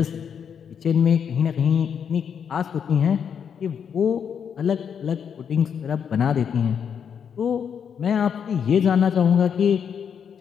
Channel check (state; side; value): quieter; right; 7.5 dB